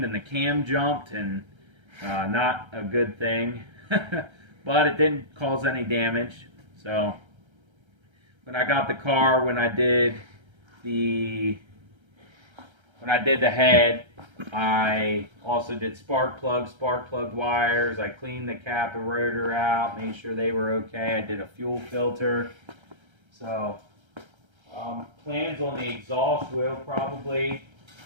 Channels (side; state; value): left; late; 1.3 ms